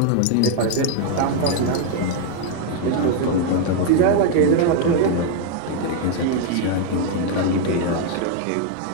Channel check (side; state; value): both; different; correlation 0.01